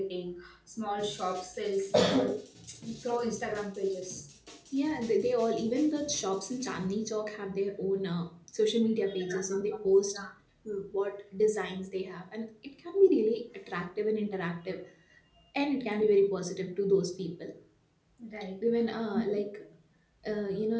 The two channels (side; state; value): both; identical; correlation 1.00